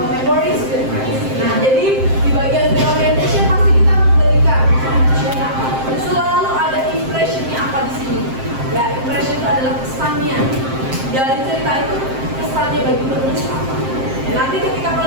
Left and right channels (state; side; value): late; left; 7.6 ms